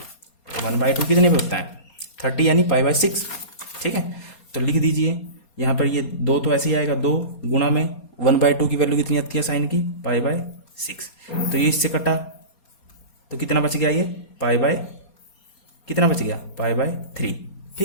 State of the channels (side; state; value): right; late; 4.2 ms